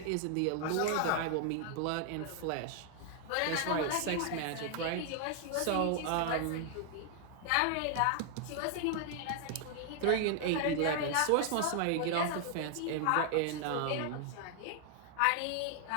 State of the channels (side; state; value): both; different; correlation 0.00